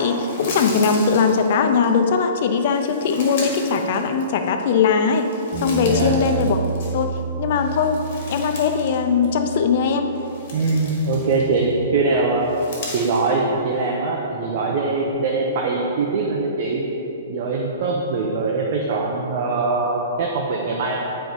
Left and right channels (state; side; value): inverted; both; correlation -0.39